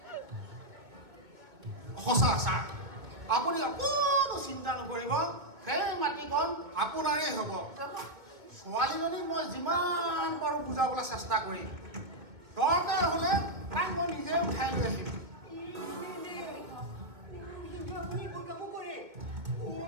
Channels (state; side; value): late; left; 2.2 ms